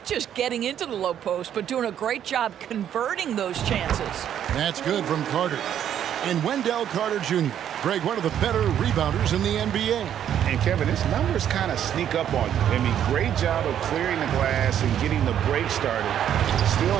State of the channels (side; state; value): left; quieter; 9.9 dB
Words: just getting into the low post, but doing a great job converting those chances. That's good from Carter. And Wendell Carter Jr., Greg, one of the better rebounders in the NBA. And, Kevin, his numbers kind of sneak up on you. I mean, great job of clearing the glass and getting the break started. Still